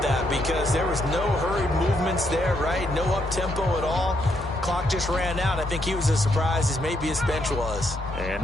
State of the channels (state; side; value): normal; both; correlation 0.76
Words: that because there was no hurried movements there, right? No up-tempo at all. Clock just ran out. I think he was as surprised as maybe his bench was. And